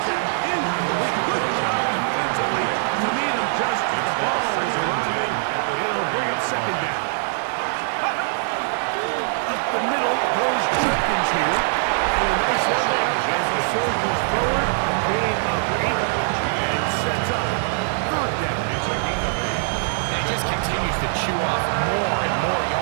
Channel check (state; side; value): silent; left; digital silence